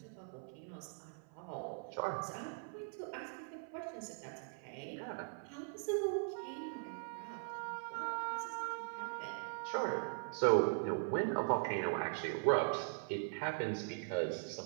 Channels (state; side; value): silent; left; 51 dB below the other